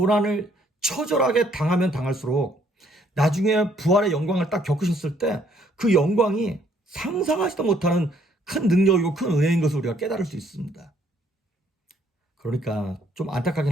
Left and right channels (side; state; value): both; normal; correlation 0.66